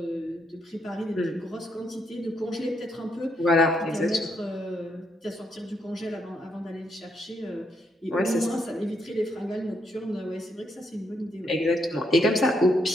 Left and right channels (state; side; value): normal; both; correlation 0.76